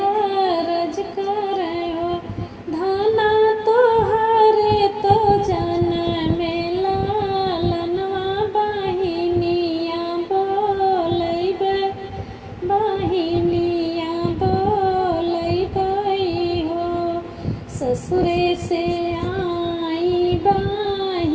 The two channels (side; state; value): both; identical; correlation 1.00